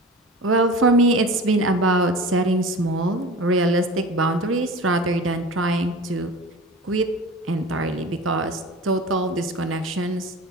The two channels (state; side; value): normal; both; correlation 0.35